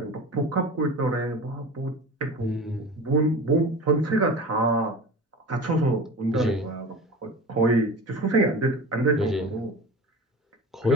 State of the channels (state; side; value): normal; both; correlation 0.34